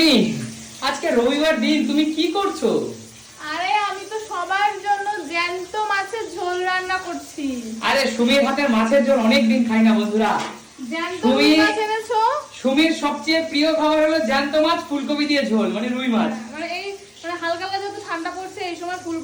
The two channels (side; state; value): both; identical; correlation 1.00